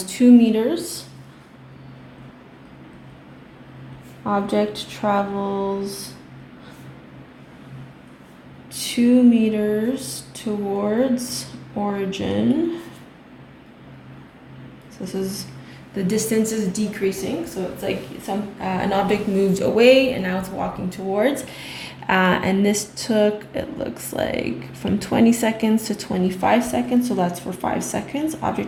2 meters. Object travels 2 meters towards origin. So this is, the distance is decreasing, so it's like an object moved away and now it's walking towards. And this took, it looks like, from 20 seconds to 25 seconds, so that's for 5 seconds.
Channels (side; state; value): both; identical; correlation 1.00